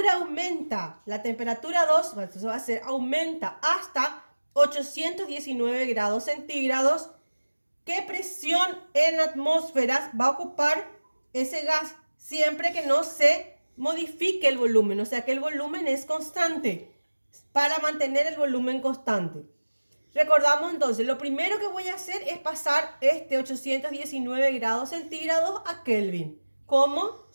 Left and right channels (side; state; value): both; inverted; correlation -1.00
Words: aumenta, la temperatura 2, entonces va a ser aumenta hasta 819 grados centígrados, ¿qué presión en atmósferas va a ocupar ese gas siempre que no se modifique el volumen? O sea que el volumen es constante, para mantener el volumen constante. Recordamos entonces, lo primero que voy a hacer es pasar este 819 grados centígrados a Kelvin. ¿Cómo?